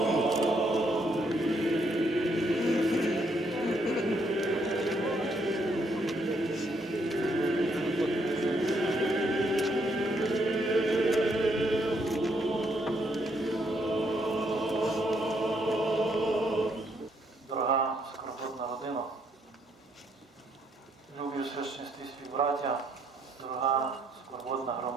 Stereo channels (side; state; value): both; normal; correlation 0.72